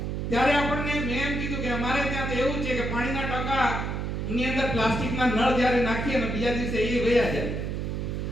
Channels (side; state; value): right; noise; hum, 2 dB below the sound